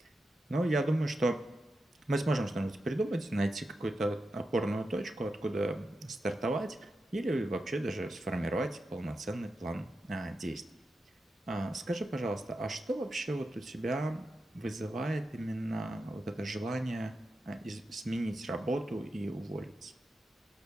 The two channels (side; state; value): both; normal; correlation 0.89